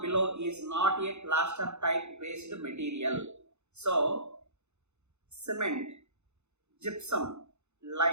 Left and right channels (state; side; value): late; left; 0.82 ms